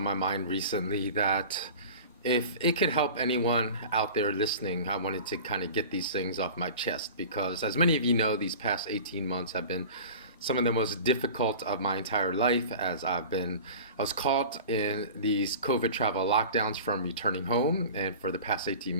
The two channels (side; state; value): both; inverted; correlation -0.38